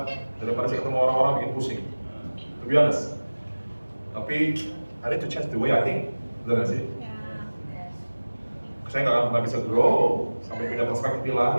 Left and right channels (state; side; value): inverted; both; correlation -1.00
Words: daripada saya ketemu orang-orang bikin pusing. To be honest. Tapi I need to change the way I think, benar nggak sih? Saya nggak akan pernah bisa grow sampai punya perspektif